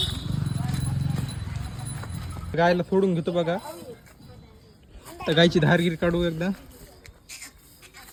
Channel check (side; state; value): both; identical; correlation 1.00